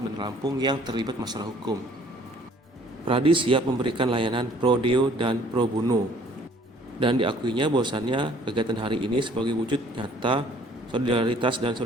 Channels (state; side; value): normal; both; correlation 0.57